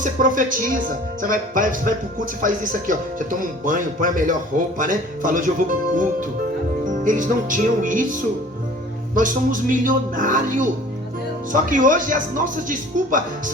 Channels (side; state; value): both; normal; correlation 0.48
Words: profetiza, você vai pro culto, você faz isso aqui, você toma um banho, põe a melhor roupa, né? Fala: hoje eu vou pro culto. Eles não tinham isso. Nós somos milionários. Só que hoje as nossas desculpas